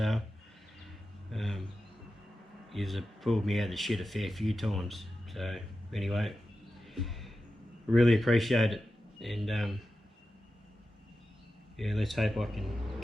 You've pulled me out of the shit a fair few times. So anyway, really appreciate it, and yeah, let's hope I can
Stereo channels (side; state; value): both; normal; correlation 0.92